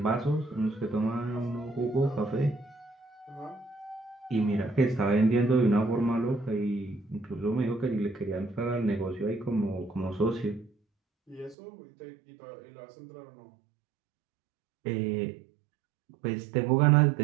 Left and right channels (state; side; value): drops out; left; at 11.6 s